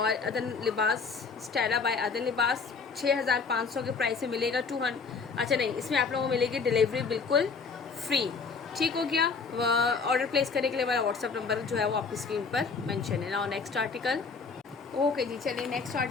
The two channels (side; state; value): right; quieter; 5.0 dB